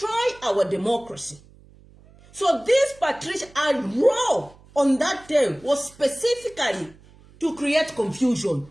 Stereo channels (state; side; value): noise; right; hum, 26 dB below the sound